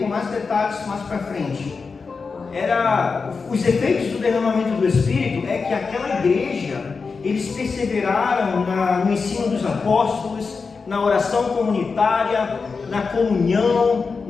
mais detalhes mais para frente. Os efeitos do derramamento do Espírito é que aquela igreja, eles perseveraram no ensino dos apóstolos, na oração comunitária, na comunhão,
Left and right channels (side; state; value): right; quieter; 4.8 dB